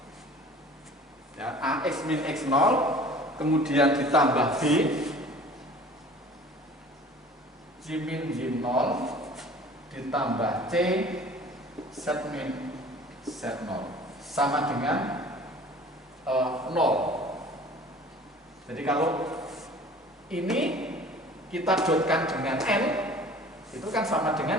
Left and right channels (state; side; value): normal; both; correlation 0.46